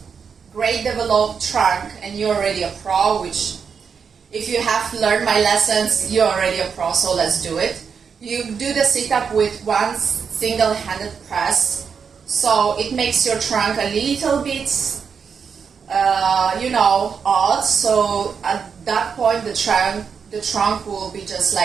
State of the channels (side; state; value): left; quieter; 6.3 dB